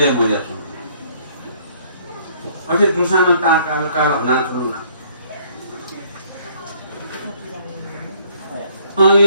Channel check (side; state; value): both; inverted; correlation -0.62